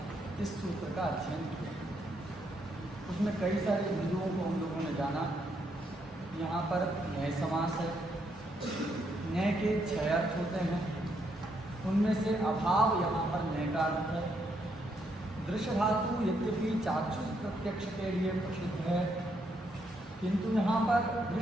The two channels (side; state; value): both; normal; correlation 0.76